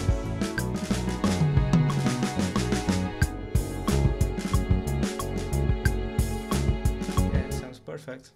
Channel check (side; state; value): both; identical; correlation 1.00